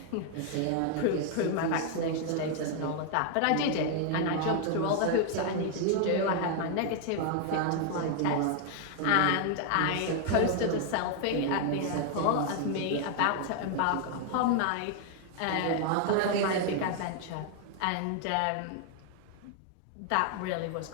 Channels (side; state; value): both; different; correlation 0.00